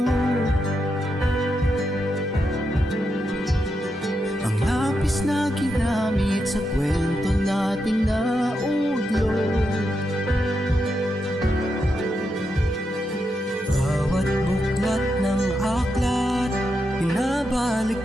Ang lapis na ginamit sa kwento nating naudlot. Bawat buklat ng aklat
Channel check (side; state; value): both; normal; correlation 0.85